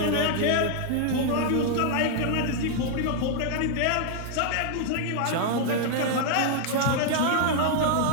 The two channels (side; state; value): both; different; correlation 0.00